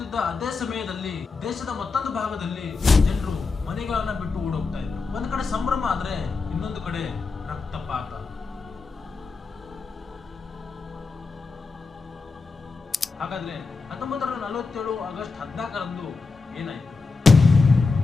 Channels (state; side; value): quieter; right; 4.3 dB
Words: ಅದೇ ಸಮಯದಲ್ಲಿ ದೇಶದ ಮತ್ತೊಂದು ಭಾಗದಲ್ಲಿ ಜನರು ಮನೆಗಳನ್ನ ಬಿಟ್ಟು ಓಡೋಗ್ತಾ ಇದ್ರು. ಒಂದ್ ಕಡೆ ಸಂಭ್ರಮ ಆದ್ರೆ ಇನ್ನೊಂದು ಕಡೆ ರಕ್ತಪಾತ. ಹಾಗಾದ್ರೆ 1947 ಆಗಸ್ಟ್ 14ರಂದು ಏನಾಯ್ತು?